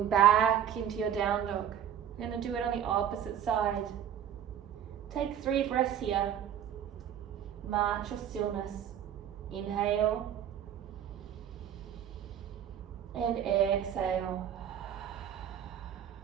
back into your down dog. You're going to do it on the opposite side. Take 3 breaths here. March or stillness. Inhale and exhale.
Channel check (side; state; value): left; quieter; 9.6 dB